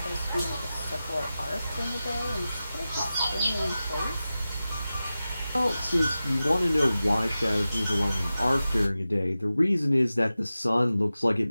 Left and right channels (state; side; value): inverted; both; correlation -0.94